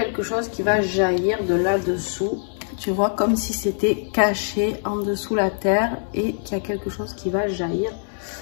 chose qui va jaillir de là-dessous. Tu vois, comme si c'était caché en dessous la terre et qu'il y a quelque chose qui va jaillir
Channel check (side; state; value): right; silent; digital silence